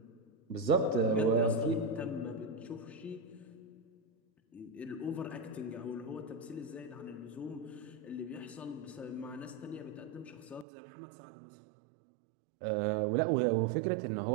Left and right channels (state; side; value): drops out; left; at 10.7 s